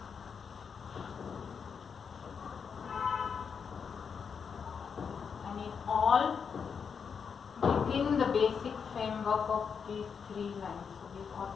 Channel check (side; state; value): right; quieter; 6.4 dB